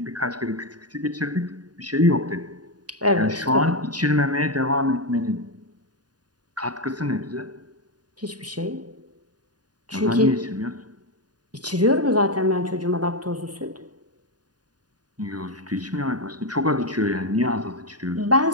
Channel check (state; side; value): late; left; 0.69 ms